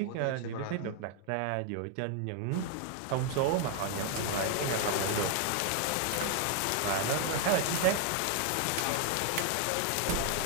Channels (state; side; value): different; both; correlation 0.00